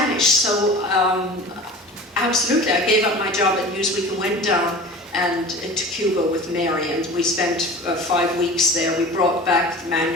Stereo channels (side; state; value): both; normal; correlation 0.37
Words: so absolutely, I gave up my job at Newsweek and went down to Cuba with Mary, and we spent 5 weeks there. We brought back the